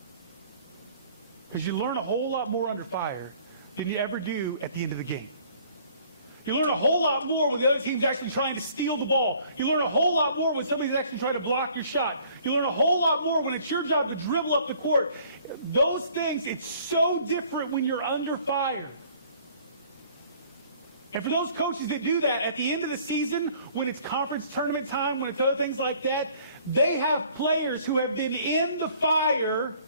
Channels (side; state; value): both; inverted; correlation -0.56